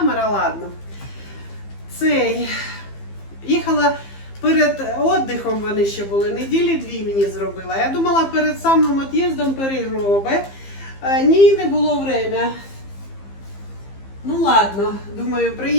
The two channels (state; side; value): late; right; 15 ms